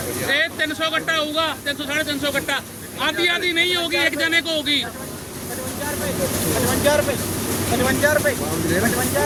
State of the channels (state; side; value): identical; both; correlation 1.00